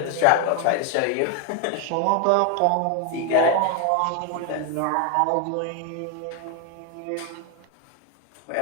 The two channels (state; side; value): different; both; correlation 0.01